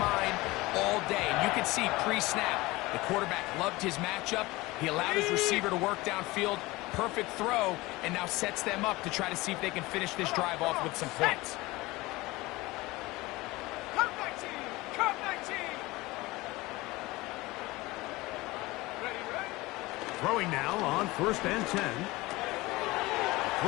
all day. And you can see pre-snap, the quarterback loved his matchup. He allowed his receiver to work downfield. Perfect throw, and now sets them up to try to see if they can finish this drive off with some points. Come 19! Come 19! Ready, ready? Throwing now on first and 10.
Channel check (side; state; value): right; quieter; 20.9 dB